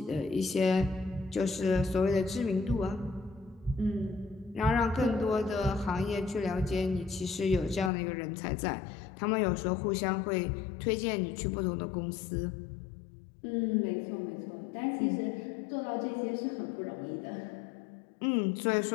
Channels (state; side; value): drops out; right; at 7.9 s